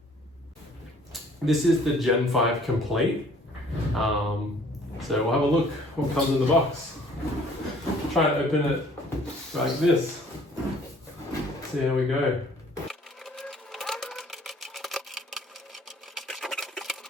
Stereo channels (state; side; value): normal; both; correlation 0.56